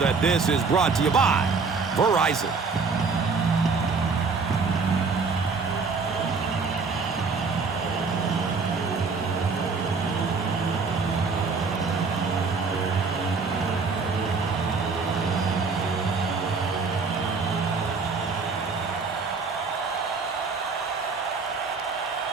this is brought to you by Verizon.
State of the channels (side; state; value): left; quieter; 4.7 dB